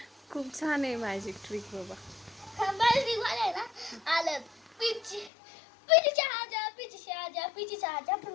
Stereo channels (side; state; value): right; drops out; at 5.3 s